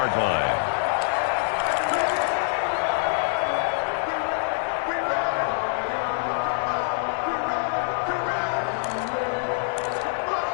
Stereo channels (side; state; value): right; silent; digital silence